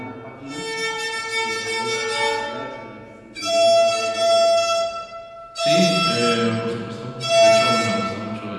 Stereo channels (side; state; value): both; identical; correlation 1.00